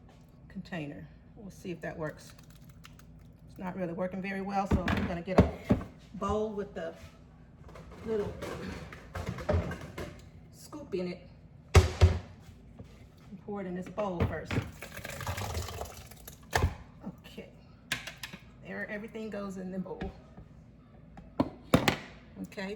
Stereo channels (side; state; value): both; identical; correlation 1.00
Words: container. We'll see if that works. It's not really working very well, so I'm gonna get a bowl with the little scoop in it and pour it in this bowl first. Okay, there, everything goes in the bowl.